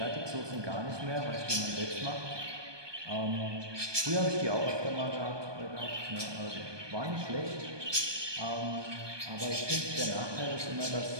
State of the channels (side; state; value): left; late; 1.2 ms